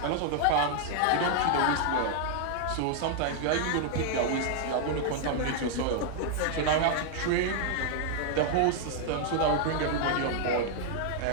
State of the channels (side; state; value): both; different; correlation 0.00